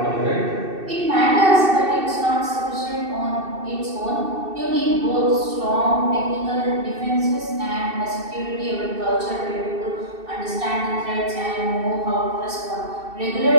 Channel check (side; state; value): left; late; 2.6 ms